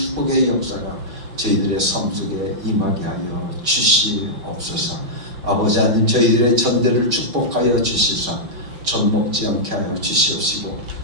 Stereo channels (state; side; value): late; left; 5.8 ms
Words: 역사가 저희들의 삶 속에 임하게 하여 주시옵소서. 아버지 하나님, 저희들의 전대를 축복하여 주시사 젖 먹지 않게 하여 주시옵시고